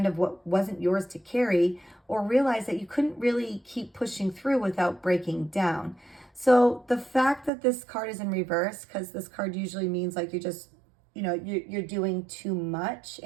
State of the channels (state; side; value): drops out; left; at 7.5 s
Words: of what wasn't yours to carry, or realized that you couldn't really keep pushing through without breaking down. So the fact that this card is in reverse, because this card usually means like you're just, you're doing too much,